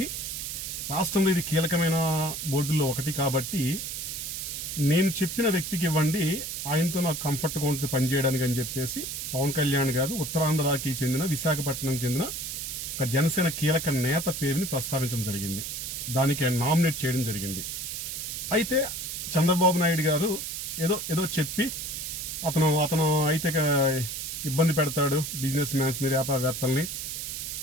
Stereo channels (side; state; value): right; noise; hiss, 5 dB below the sound